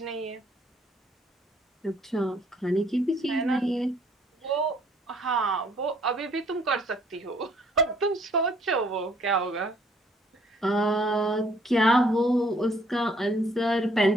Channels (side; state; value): both; normal; correlation 0.63